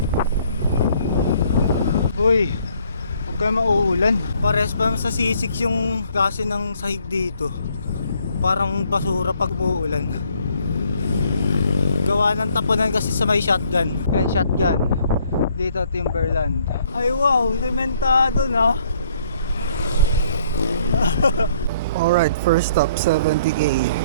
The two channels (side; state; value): both; inverted; correlation -0.64